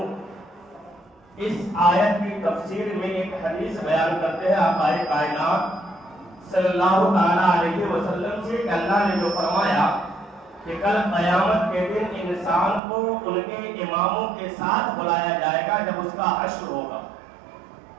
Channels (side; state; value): left; drops out; at 12.8 s